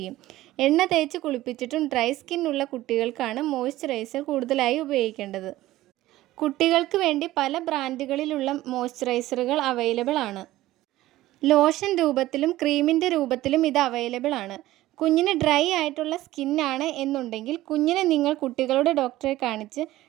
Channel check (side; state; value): left; quieter; 16.0 dB